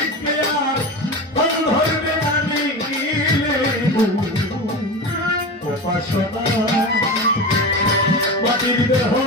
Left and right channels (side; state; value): both; normal; correlation 0.25